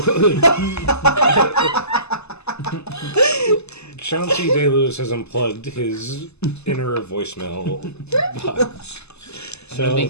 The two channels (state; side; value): late; right; 0.80 ms